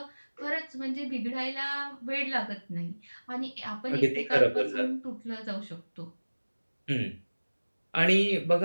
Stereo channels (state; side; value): inverted; both; correlation -1.00